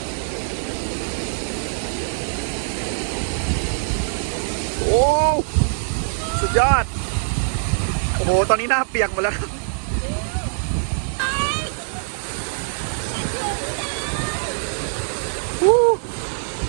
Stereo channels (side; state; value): left; silent; 64 dB below the other